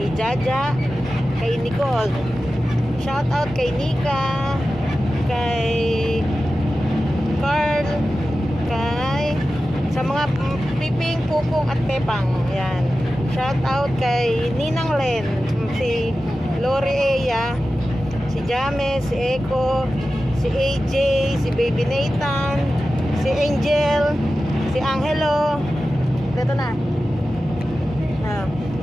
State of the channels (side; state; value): both; normal; correlation 0.94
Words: Jaja, kay Nicole. Shout out kay Nika, kay Carl, sa mga Piping, Pupong at Pepang. Yan. Shout out kay Ninang Len, si Lori Eya, si James, si Eko, si AJ, si Baby Nathan, si Angel, si Angelo. Dito na.